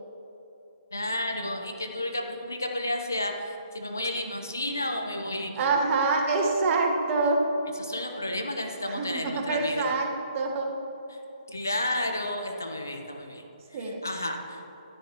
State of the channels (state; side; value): inverted; both; correlation -0.62